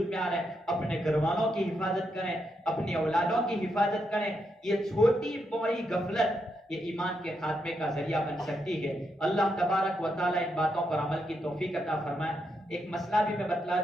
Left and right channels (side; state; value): both; normal; correlation 0.81